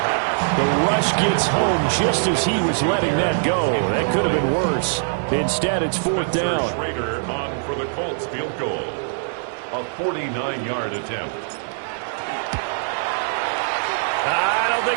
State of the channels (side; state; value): left; silent; 64 dB below the other